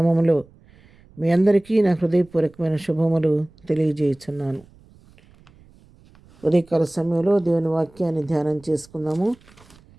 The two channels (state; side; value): noise; right; rumble, 27 dB below the sound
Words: మీ అందరికీ నా హృదయపూర్వకమైన శుభములు తెలియజేయుచున్నాను. ఉదయకాల సమయంలో దేవుని వాక్యాన్ని ధ్యానం చేసుకుందాము.